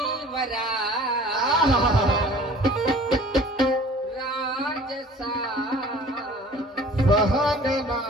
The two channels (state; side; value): normal; both; correlation 0.48